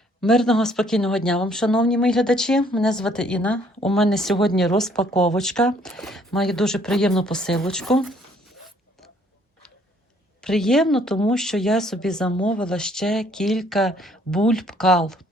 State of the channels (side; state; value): both; normal; correlation 0.63